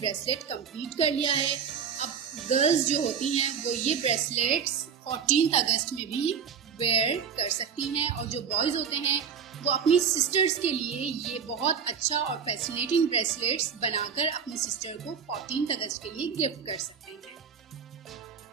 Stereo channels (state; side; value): quieter; left; 7.0 dB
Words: कंप्लीट कर लिया है. अब गर्ल्स जो होती हैं वो ये ब्रेसलेट्स 14th अगस्त में भी वेयर कर सकती हैं और जो बॉयज़ होते हैं वो अपनी सिस्टर्स के लिए ये बहुत अच्छा और फैसिनेटिंग ब्रेसलेट्स बनाकर अपनी सिस्टर को 14th अगस्त के लिए गिफ्ट कर सकते हैं.